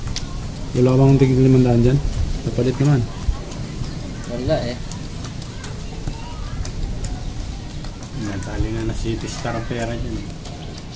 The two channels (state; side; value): identical; both; correlation 1.00